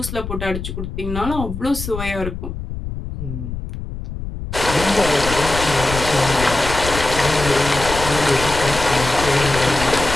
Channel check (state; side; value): noise; left; rumble, 7 dB below the sound